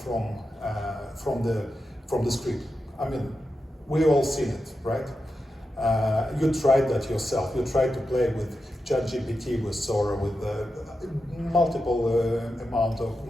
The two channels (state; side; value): normal; both; correlation 0.89